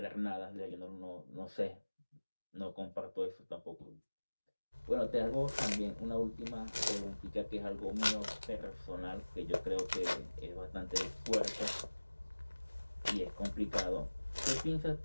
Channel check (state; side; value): inverted; both; correlation -1.00